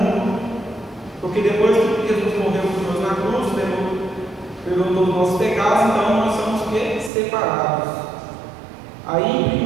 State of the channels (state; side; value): drops out; left; at 7.1 s